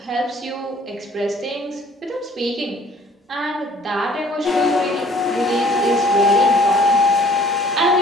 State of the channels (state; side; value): normal; both; correlation 0.55